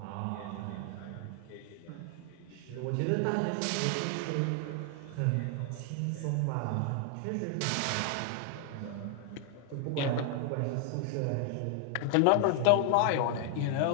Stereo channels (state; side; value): different; both; correlation 0.00